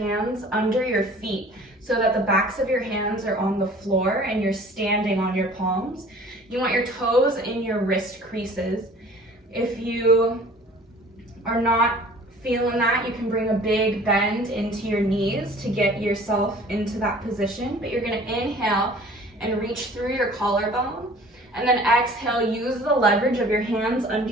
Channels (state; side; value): normal; both; correlation 0.48